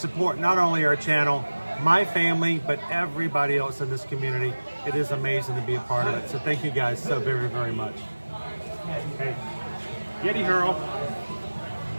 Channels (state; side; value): inverted; both; correlation -1.00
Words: not only our channel, my family, but everybody else in this community. It is amazing to be a part of it. So thank you guys so very, very much. Hey, Yeti Hurl.